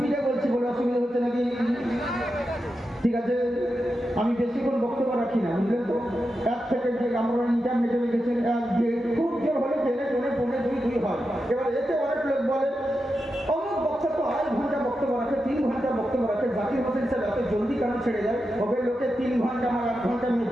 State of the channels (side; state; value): both; normal; correlation 0.89